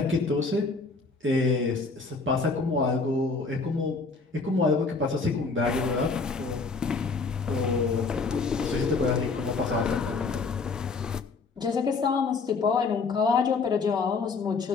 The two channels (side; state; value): right; quieter; 4.2 dB